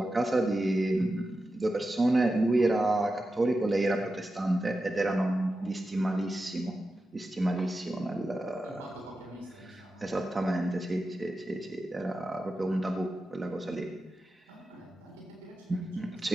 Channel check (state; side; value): normal; both; correlation 0.91